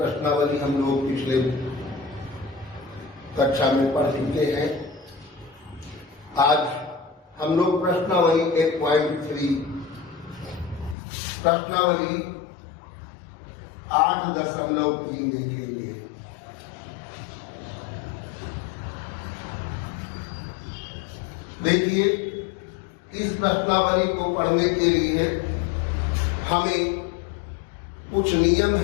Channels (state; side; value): drops out; right; at 11.0 s